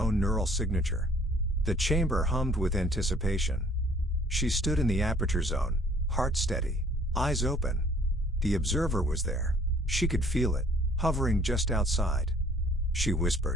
neural signature. The chamber hummed with anticipation. She stood in the aperture zone, heart steady, eyes open. The observer was there. She could feel it, hovering just outside. She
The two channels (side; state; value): both; normal; correlation 0.57